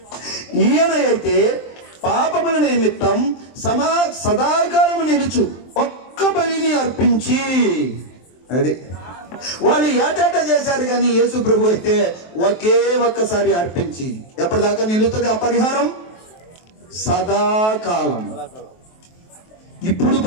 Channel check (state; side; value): late; right; 23 ms